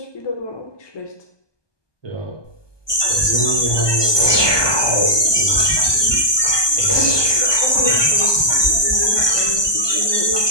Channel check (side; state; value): right; late; 1.2 ms